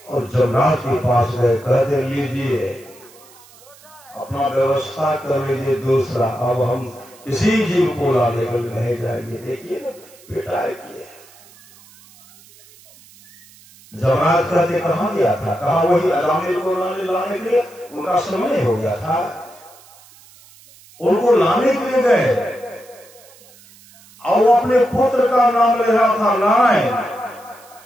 और जमराज के पास गए। कहते लीजिए अपना व्यवस्था कर लीजिए दूसरा, अब हम किसी जीव को लाने के लिए नहीं जाएंगे। देखिए ना पिटाई की है। जमराज कहते कहां गया था? कहा वही अजामिल को लाने के लिए उनका समय हो गया था, उनको लाने के लिए गए और वो अपने पुत्र का नाम ले रहा था नारायण।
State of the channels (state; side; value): noise; right; hiss, 25 dB below the sound